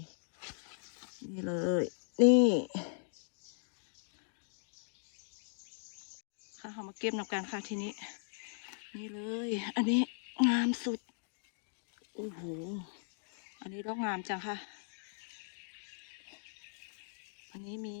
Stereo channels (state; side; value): silent; right; digital silence